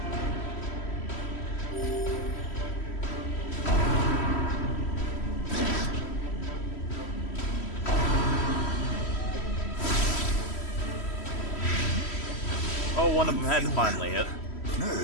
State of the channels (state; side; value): late; right; 3.1 ms